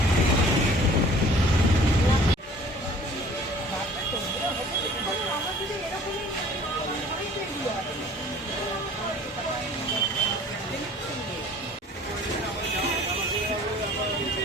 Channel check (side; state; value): both; normal; correlation 0.50